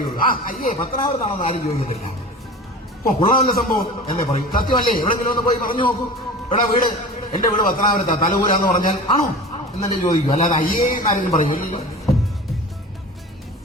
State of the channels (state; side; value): normal; both; correlation 0.36